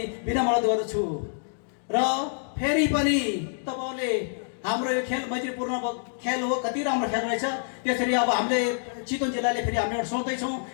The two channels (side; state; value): right; silent; digital silence